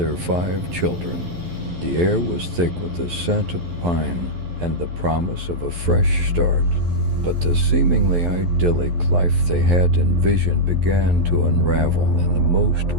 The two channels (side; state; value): left; late; 11 ms